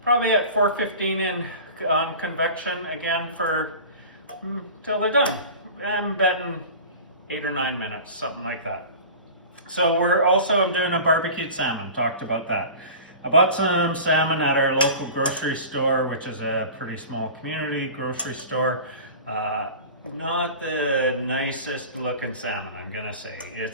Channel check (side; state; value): both; inverted; correlation -0.37